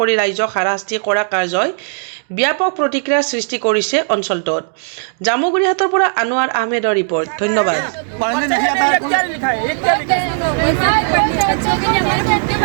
ৰাইজক হাৰাশাস্তি কৰা কাৰ্যই ব্যাপক প্ৰতিক্ৰিয়াৰ সৃষ্টি কৰিছে অঞ্চলটোত। জামুগুৰিহাটৰ পৰা আনোৱাৰ আহমেদৰ ৰিপৰ্ট। ধন্যবাদ।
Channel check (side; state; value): left; silent; digital silence